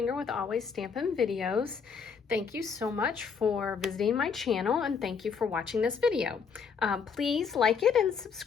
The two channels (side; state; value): right; quieter; 6.0 dB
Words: with Always Stampin' Videos. Thank you so much for visiting my channel and thank you for watching this video. Please like it and